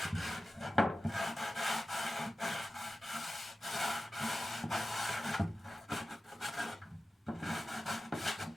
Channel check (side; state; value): both; normal; correlation 0.94